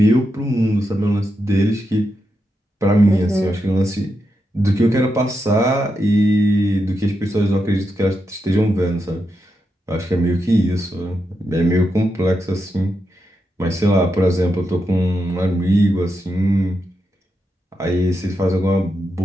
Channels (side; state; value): both; normal; correlation 0.85